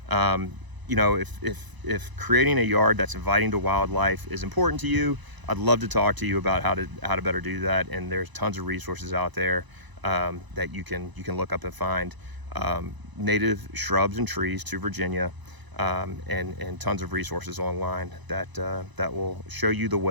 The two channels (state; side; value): late; left; 1.0 ms